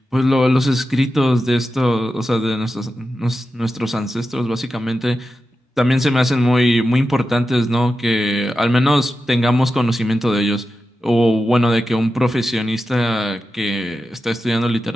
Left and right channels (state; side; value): normal; both; correlation 0.91